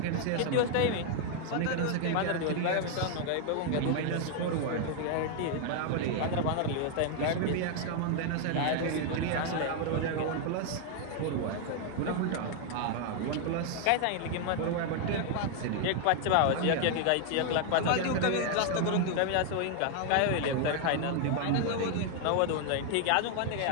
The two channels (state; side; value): different; both; correlation 0.00